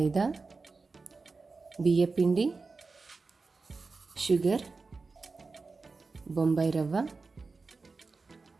బియ్యపిండి, షుగర్, బొంబాయి రవ్వ,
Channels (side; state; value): left; quieter; 4.1 dB